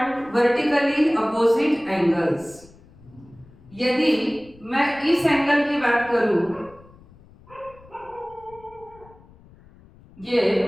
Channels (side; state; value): left; noise; rumble, 25 dB below the sound